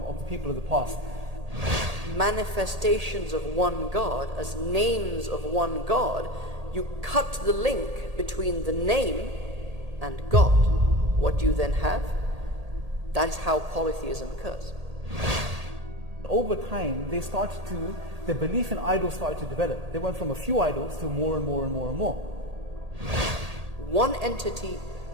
of the people of the past. Manifestations of one God, as names of one God, you cut the link between the name and God. What do you then have? That is how polytheism occurs. Over time, their belief in idols started to develop. They went from a few idols to more and more and more and more. One entity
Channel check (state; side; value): late; left; 1.8 ms